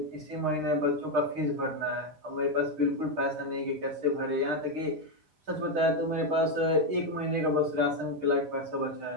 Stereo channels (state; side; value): late; left; 6.5 ms